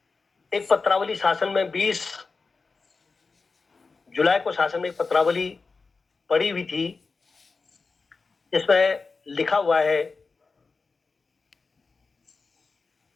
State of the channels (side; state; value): right; quieter; 4.3 dB